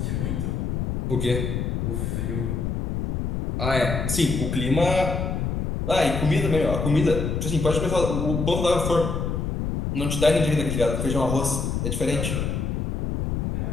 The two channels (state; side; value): noise; left; rumble, 2 dB below the sound